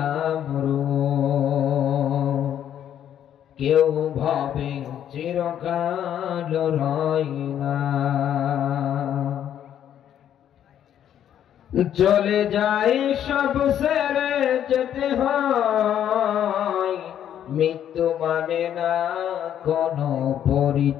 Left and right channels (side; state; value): right; quieter; 10.1 dB